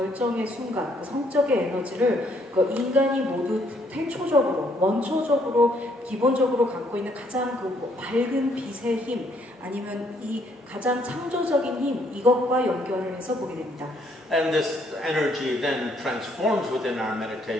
순간, 그 성적의 에너지를 그 인간이 모두 태초적으로, 원초적으로, 기본적으로 갖고 있는 가장 그 밝은 빛의 힘, 아니면 이 가장 창조적인 힘, 이것과 연결을 해서 보게 됩니다. And this energy then transforms within our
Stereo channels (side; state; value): both; normal; correlation 0.68